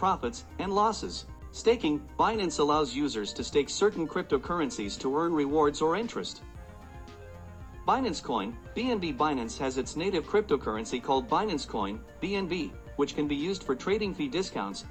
and losses. Staking. Binance allows users to stake certain cryptocurrencies to earn rewards or interest. Binance Coin. BNB. Binance has its native cryptocurrency called Binance Coin, BNB, which can be used for trading fee discounts,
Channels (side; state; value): both; identical; correlation 1.00